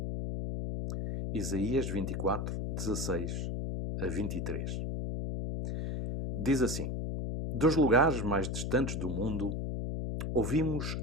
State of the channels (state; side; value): noise; left; hum, 2 dB below the sound